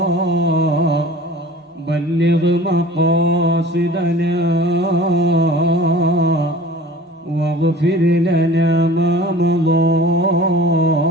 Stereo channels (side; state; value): both; normal; correlation 0.43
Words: بلغ مقاصدنا واغفر لنا ما مضى